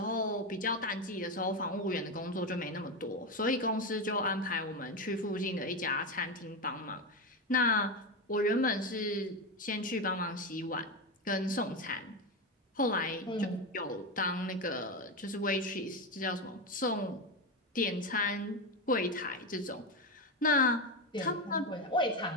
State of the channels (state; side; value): normal; both; correlation 0.14